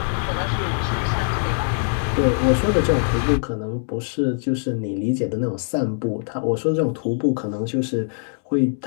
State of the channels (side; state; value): right; silent; digital silence